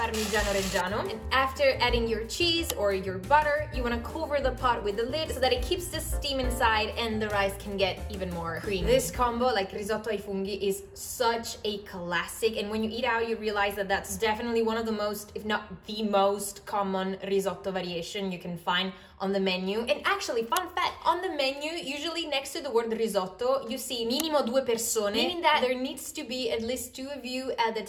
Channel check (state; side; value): identical; both; correlation 1.00